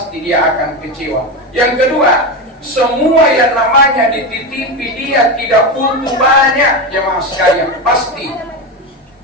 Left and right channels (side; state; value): both; normal; correlation 0.17